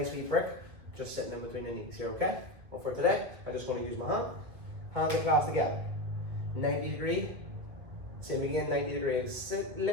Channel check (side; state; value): left; late; 1.9 ms